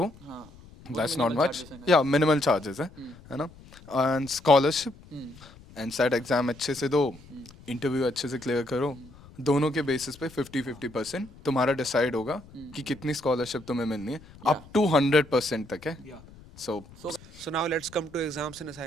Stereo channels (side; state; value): left; noise; rumble, 21 dB below the sound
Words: दैट्स नॉट मच, या मिनिमल चार्जेस है ना। एंड स्कॉलरशिप, एनसेट एग्जाम अच्छे से दो, इंटरव्यू अच्छे से क्लियर करो, दोनों के बेसिस पे 50-50% तुम्हारा डिसाइड होगा कि कितनी स्कॉलरशिप तुम्हें मिलनी है, अप टू 100% तक है। So so now let's come to exams and